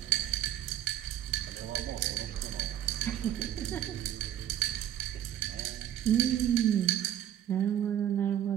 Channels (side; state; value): left; quieter; 11.1 dB